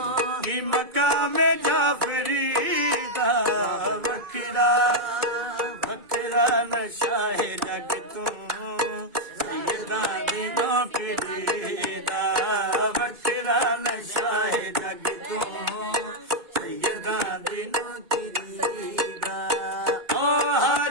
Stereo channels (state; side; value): late; left; 2.2 ms